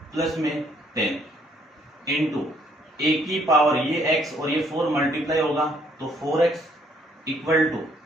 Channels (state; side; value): normal; both; correlation 0.66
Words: प्लस में 10 इंटू a की पावर ये x और ये 4 मल्टीप्लाई होगा तो 4x इक्वल टू